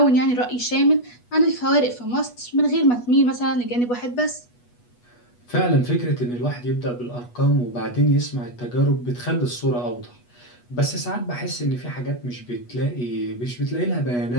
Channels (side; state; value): right; late; 8.2 ms